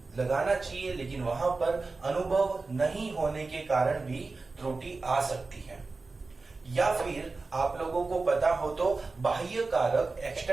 लगाना चाहिए लेकिन वहां पर अनुभव नहीं होने के कारण भी त्रुटि आ सकती है। या फिर आप लोगों को पता हो तो बाह्य कारक,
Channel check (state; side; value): quieter; left; 3.8 dB